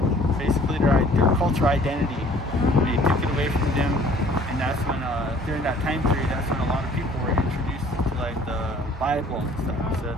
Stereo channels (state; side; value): normal; both; correlation 0.54